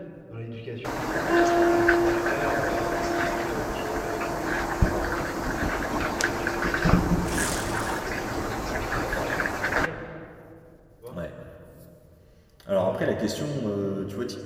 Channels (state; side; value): identical; both; correlation 1.00